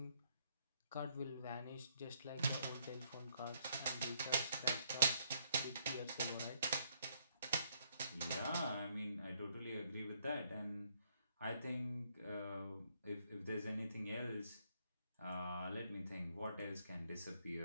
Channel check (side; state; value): both; inverted; correlation -0.71